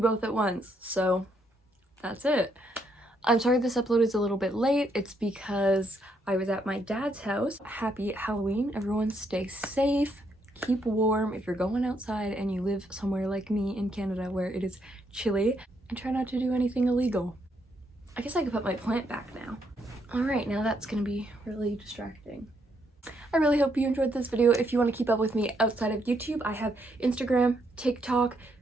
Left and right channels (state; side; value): normal; both; correlation 0.75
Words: both at once? So that's it. I'm sorry this upload is a little bit late. It's because I was at my dad's house. Happy Halloween. Everyone stay safe. Keep warm if you're going outside and you live somewhere like me in Canada where it is chilly. And try not to do anything illegal. I guess I could put my plant back now. Alright, now that's gonna be really distracting. I really hope you enjoyed this video. If you want to keep up with me outside of YouTube, I have Instagram, TikTok,